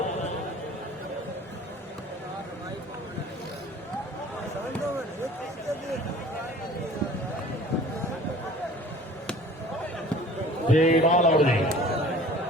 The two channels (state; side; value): normal; both; correlation 0.47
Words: जी बाल और जी